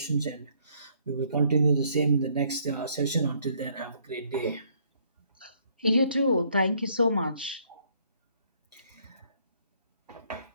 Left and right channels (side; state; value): both; inverted; correlation -0.66